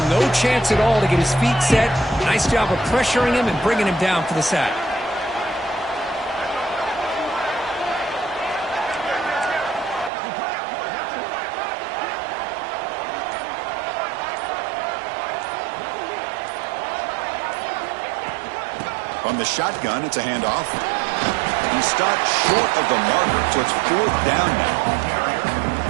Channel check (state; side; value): drops out; left; at 10.1 s